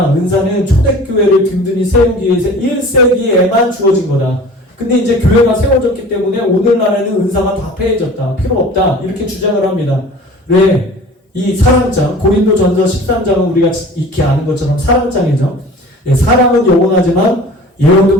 은사는 초대교회를 든든히 세우기 위해서 1세기에만 주어진 거다. 근데 이제 교회가 세워졌기 때문에 오늘날에는 은사가 다 폐해졌다. 필요 없다. 이렇게 주장을 합니다. 왜? 이 사랑장, 고린도전서 13장은 우리가 익히 아는 것처럼 사랑장이죠. 사랑은 영원하지만 예언도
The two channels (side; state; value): both; normal; correlation 0.43